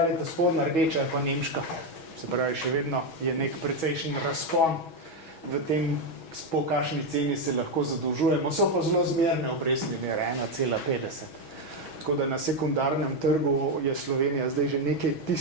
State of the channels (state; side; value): late; right; 6.2 ms